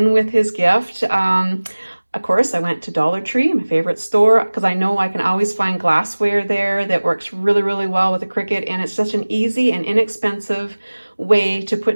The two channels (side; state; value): both; inverted; correlation -1.00